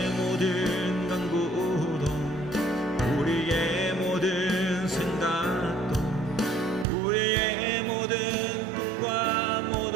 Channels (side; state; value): left; drops out; at 6.9 s